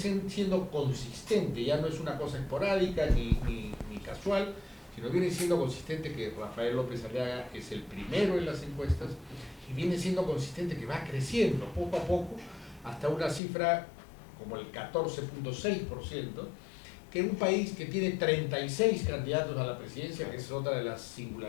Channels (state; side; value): drops out; right; at 13.4 s